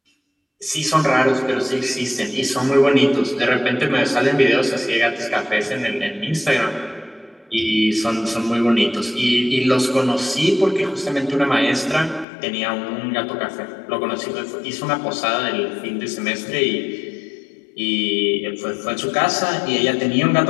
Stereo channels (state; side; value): drops out; right; at 12.2 s